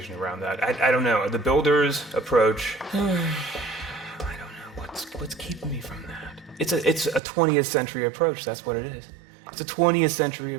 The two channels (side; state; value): left; drops out; at 7.2 s